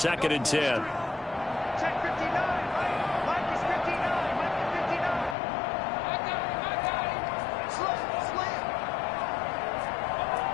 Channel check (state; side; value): drops out; right; at 5.4 s